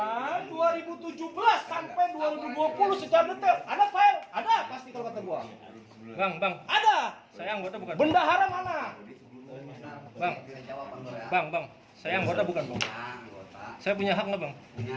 2017 sampai 2020 secara detail. Ada file? Ada pasti kalau kata gua. Bang, Ada. saya anggota bukan? Bendahara mana? Bang, Jawaban lo ya. bang, saya anggota bukan, Bang? Ya, anggota. Saya punya hak nggak, Bang?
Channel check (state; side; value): identical; both; correlation 1.00